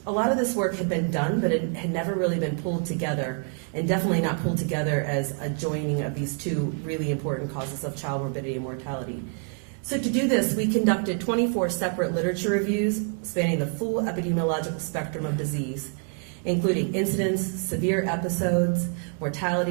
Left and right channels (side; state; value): left; quieter; 39.5 dB